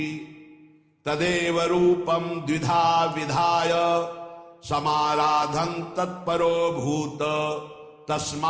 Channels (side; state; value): both; identical; correlation 1.00